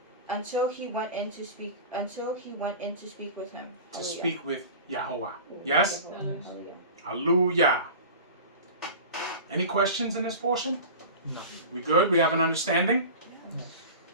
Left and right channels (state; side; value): inverted; both; correlation -0.34